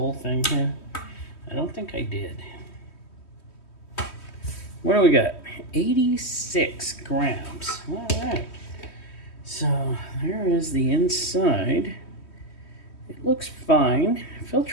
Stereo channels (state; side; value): late; right; 3.1 ms